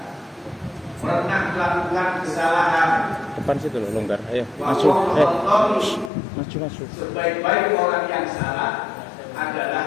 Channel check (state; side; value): drops out; right; at 6.1 s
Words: pernah melakukan kesalahan. Depan situ loh, longgar. Ayo, masuk. Masuk. Sebaik-baik orang yang salah